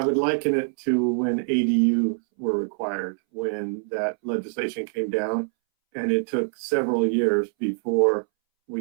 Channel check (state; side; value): silent; left; 62 dB below the other